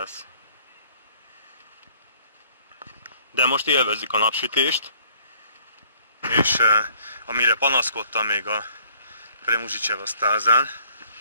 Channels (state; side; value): inverted; both; correlation -0.59